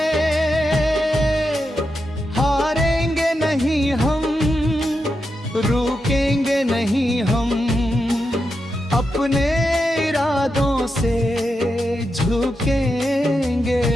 हारेंगे नहीं हम, रुकेंगे नहीं हम, अपने इरादों से झुकेंगे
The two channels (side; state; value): both; normal; correlation 0.87